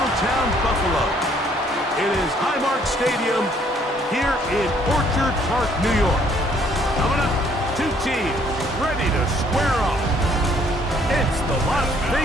Buffalo. It is Highmark Stadium here in Orchard Park, New York. Coming up, two teams ready to square off. It's the Las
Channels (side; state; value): both; normal; correlation 0.63